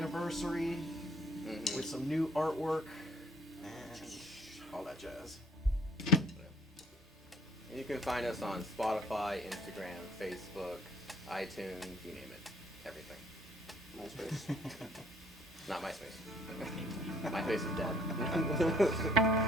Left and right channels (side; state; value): both; normal; correlation 0.59